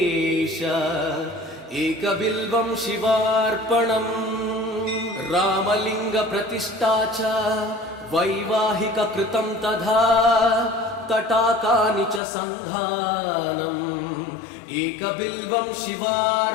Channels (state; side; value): drops out; right; at 12.2 s